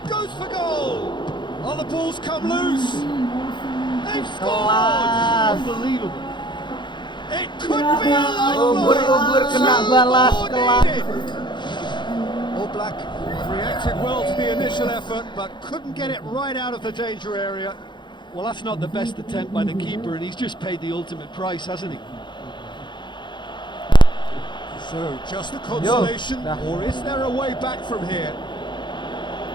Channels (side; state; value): right; late; 0.22 ms